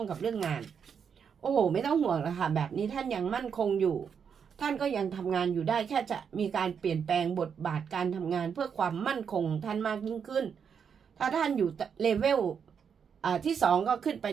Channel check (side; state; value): left; quieter; 7.0 dB